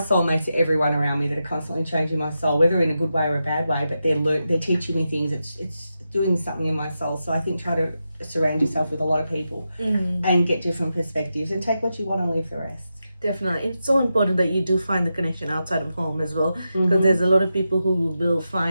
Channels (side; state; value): both; inverted; correlation -0.88